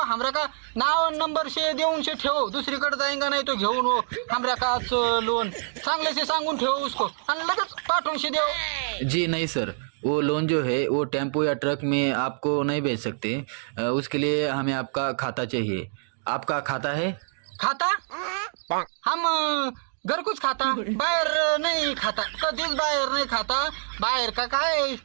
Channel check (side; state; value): left; silent; digital silence